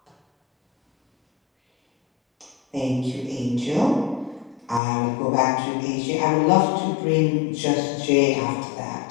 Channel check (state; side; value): drops out; right; at 4.8 s